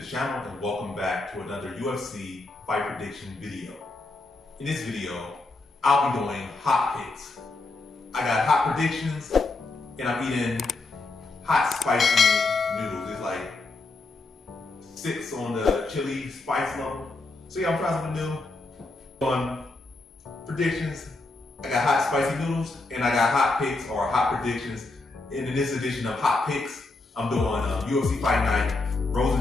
channel and welcome back to another UFC fight prediction video. In this video, I'll be doing hot picks. I got hot predictions and I'm eating hot spicy noodles. It's like 6 on the chili spice level. So yeah, I'm trying something new. On predictions, I got hot spicy noodles and I got hot picks or hot predictions. And in this edition of hot picks, I'm doing UFC Fight Night,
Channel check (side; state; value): right; quieter; 3.3 dB